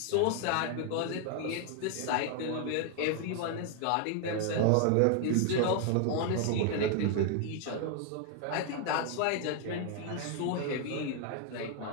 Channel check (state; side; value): different; both; correlation 0.00